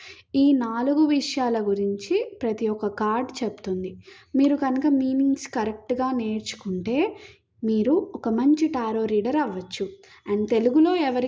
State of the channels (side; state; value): both; identical; correlation 1.00